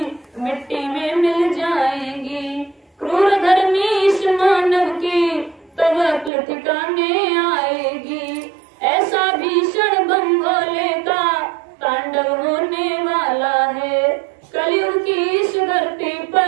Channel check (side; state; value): left; drops out; at 6.3 s